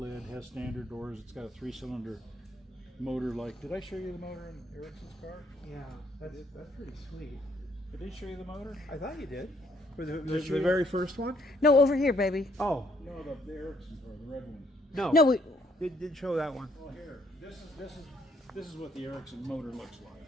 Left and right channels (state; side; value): normal; both; correlation 0.68